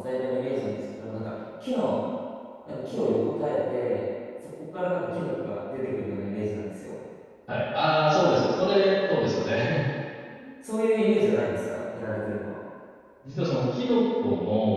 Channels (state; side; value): identical; both; correlation 1.00